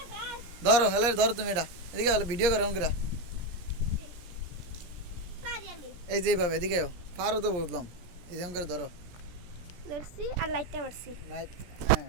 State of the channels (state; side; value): late; left; 17 ms